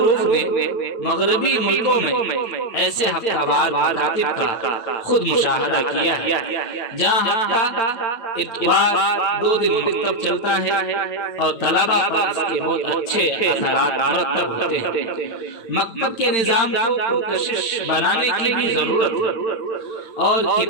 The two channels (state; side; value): late; right; 9.2 ms